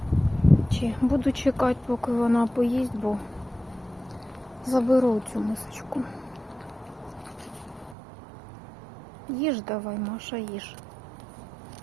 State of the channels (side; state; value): left; drops out; at 8.0 s